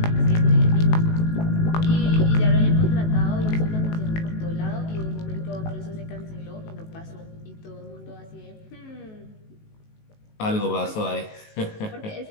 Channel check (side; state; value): right; late; 19 ms